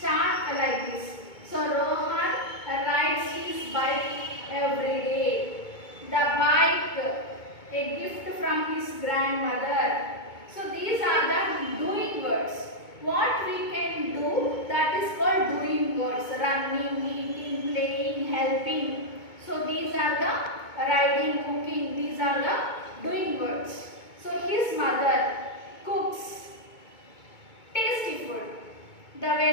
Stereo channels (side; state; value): right; late; 2.2 ms